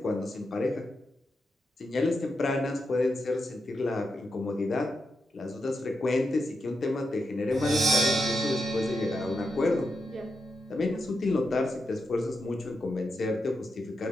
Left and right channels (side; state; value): both; normal; correlation 0.86